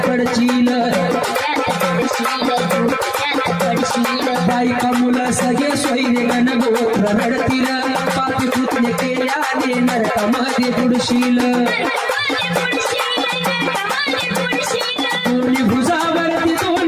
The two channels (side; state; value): both; identical; correlation 1.00